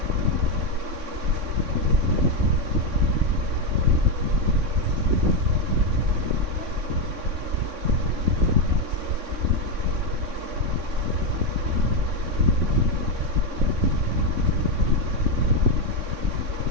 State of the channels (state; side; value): late; left; 3.6 ms